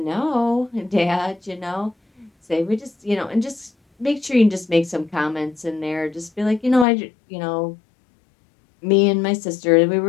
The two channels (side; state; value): right; drops out; at 6.9 s